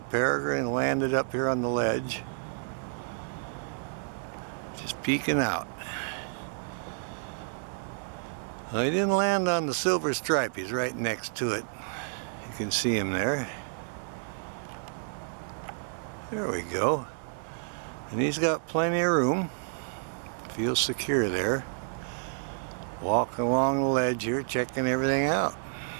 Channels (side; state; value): left; silent; digital silence